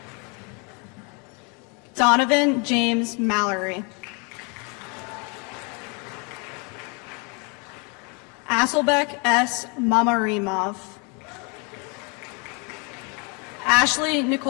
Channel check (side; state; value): right; quieter; 32.9 dB